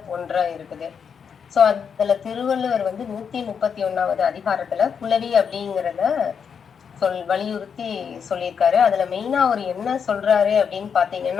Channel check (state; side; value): quieter; right; 6.8 dB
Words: ஒன்றா இருக்குது. ஸோ அதுல திருவள்ளுவர் 131வது அதிகாரத்துல புலவி அப்படிங்கிறத வலியுறுத்தி சொல்லியிருக்காரு. அதுல மெயினா அவர் என்ன சொல்றாரு அப்படின்னு